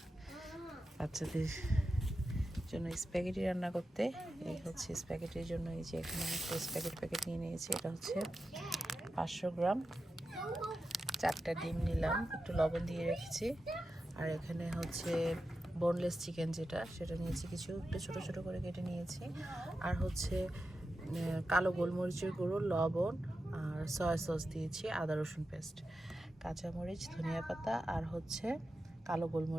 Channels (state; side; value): normal; both; correlation 0.90